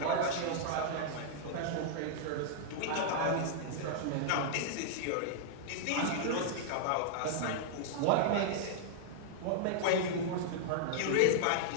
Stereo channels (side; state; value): both; different; correlation -0.01